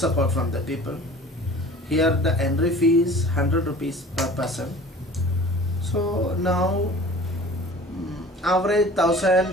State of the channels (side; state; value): both; normal; correlation 0.44